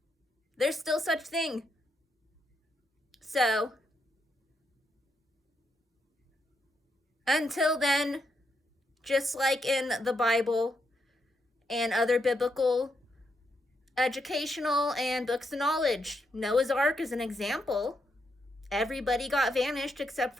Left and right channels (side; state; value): both; normal; correlation 0.80